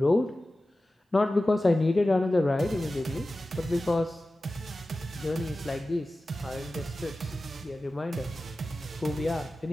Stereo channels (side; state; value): both; normal; correlation 0.95